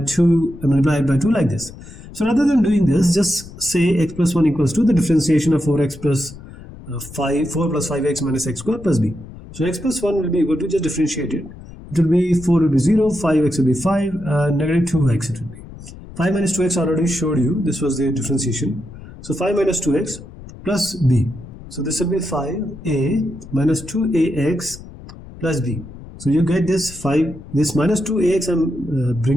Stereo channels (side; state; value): left; noise; rumble, 16 dB below the sound